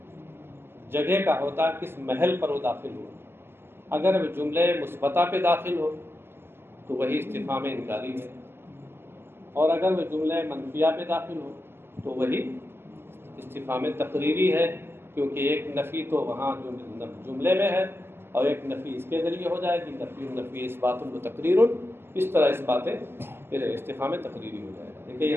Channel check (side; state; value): left; late; 0.11 ms